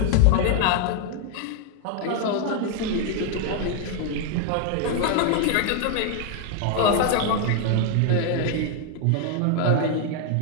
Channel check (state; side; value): different; both; correlation 0.00